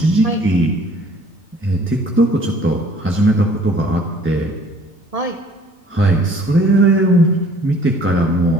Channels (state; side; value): normal; both; correlation 0.55